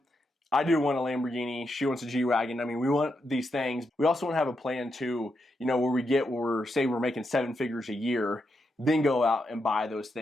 I do want a Lamborghini. She wants a G-Wagon. I mean, we want these things. We also want to have a plan too, where say we're making 7 figures a year, then go out and buy those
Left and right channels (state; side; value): normal; both; correlation 0.83